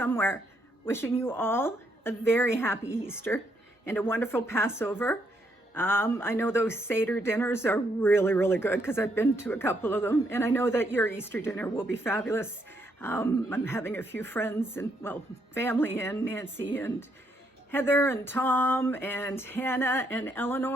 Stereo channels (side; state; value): both; normal; correlation 0.75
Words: Wishing you all a very happy Easter and a wonderful Passover. I know those Seder dinners are really, really good because I've been to a couple of them. And I know that your Easter dinner will be fabulous. I'm having a few friends and, well, family in, Nancy and Heather and Tom and Hannah and